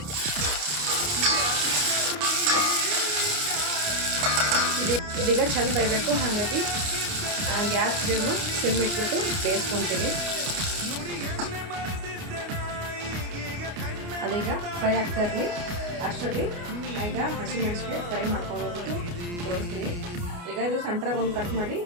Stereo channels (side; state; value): left; late; 29 ms